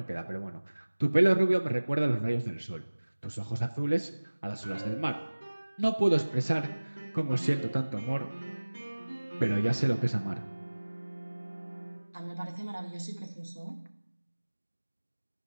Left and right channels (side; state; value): both; inverted; correlation -1.00